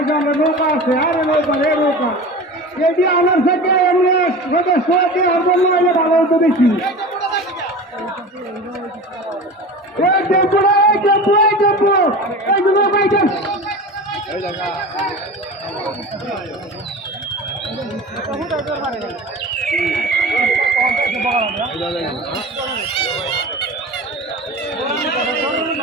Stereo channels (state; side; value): normal; both; correlation 0.33